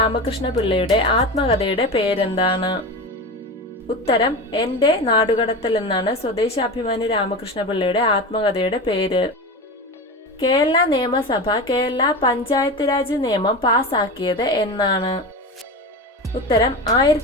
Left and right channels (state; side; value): normal; both; correlation 0.26